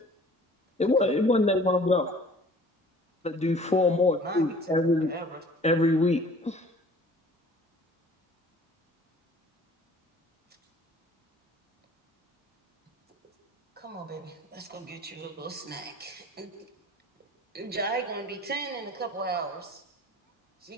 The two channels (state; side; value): normal; both; correlation 0.50